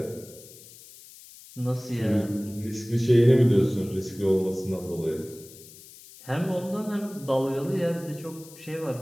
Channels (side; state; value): left; noise; hiss, 20 dB below the sound